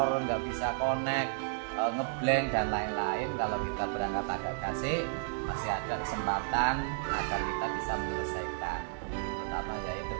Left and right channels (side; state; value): left; silent; digital silence